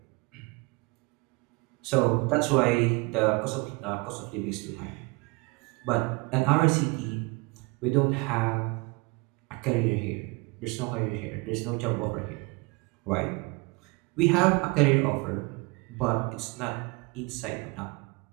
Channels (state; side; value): quieter; left; 27.5 dB